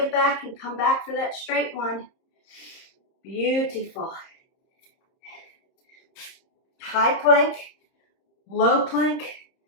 back and come back for that straight one. Beautiful. High plank, low plank,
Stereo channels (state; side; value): late; right; 30 ms